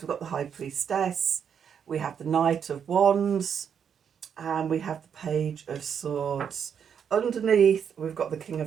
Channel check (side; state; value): left; quieter; 7.7 dB